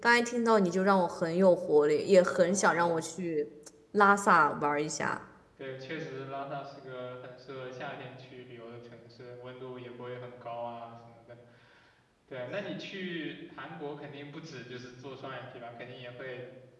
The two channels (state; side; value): identical; both; correlation 1.00